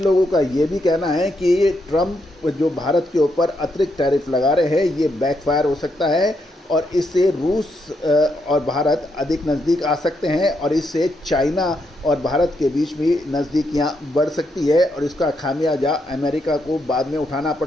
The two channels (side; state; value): both; normal; correlation 0.79